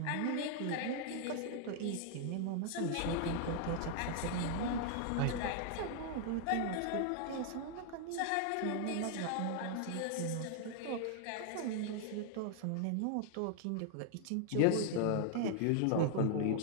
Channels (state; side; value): different; both; correlation 0.00